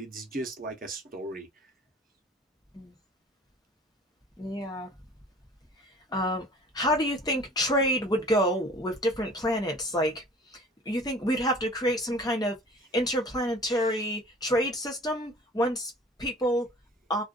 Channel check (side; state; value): both; normal; correlation 0.47